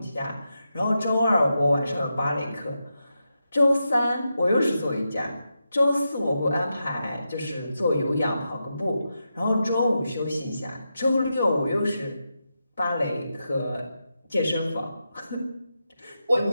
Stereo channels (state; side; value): inverted; both; correlation -0.88